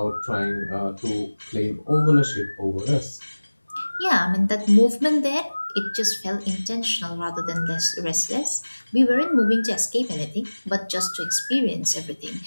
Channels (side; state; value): both; inverted; correlation -1.00